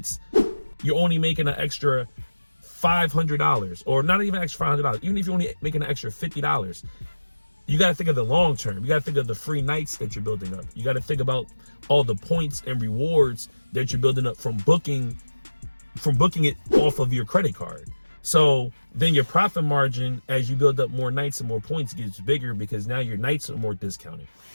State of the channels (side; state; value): both; inverted; correlation -1.00